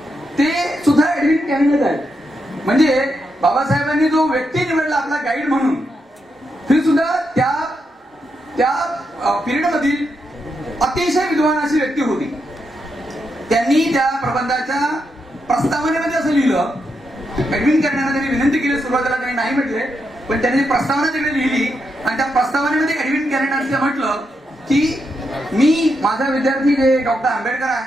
ते सुद्धा एडविन कॅननच आहेत. म्हणजे बाबासाहेबांनी जो व्यक्ती निवडला आपला गाईड म्हणून, ही सुद्धा त्या पिरियड मधील अतिशय विद्वान अशी व्यक्ती होती. त्यांनी त्या प्रबंधाच्या प्रस्तावनेमध्ये असं लिहिलं, एडविन कॅननला त्यांनी विनंती केली, सुरुवातीला त्यांनी नाही म्हटले, पण त्यांनी प्रस्तावना तिकडे लिहिली. आणि त्या प्रस्तावनेमध्ये एडविन कॅनन असं म्हटलं की मी, माझा विद्यार्थी जे डॉक्टर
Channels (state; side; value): normal; both; correlation 0.83